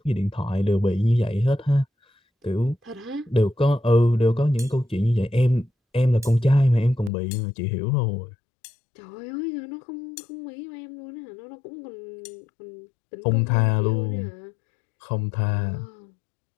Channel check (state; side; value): drops out; right; at 7.1 s